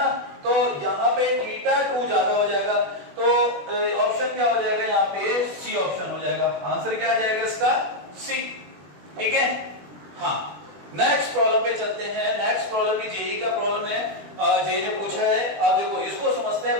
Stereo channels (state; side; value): late; left; 20 ms